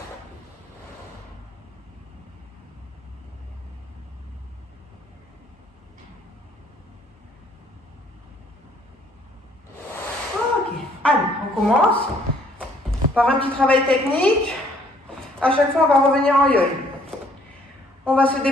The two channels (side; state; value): both; normal; correlation 0.62